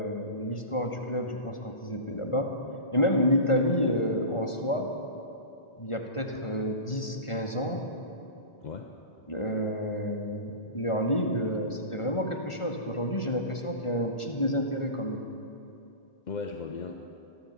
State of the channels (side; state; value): right; late; 1.4 ms